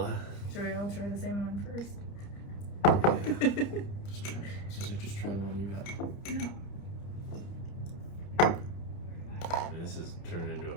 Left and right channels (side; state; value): right; late; 30 ms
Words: Should we all try the same one first? Yeah. Just try the one you got. This is turning into a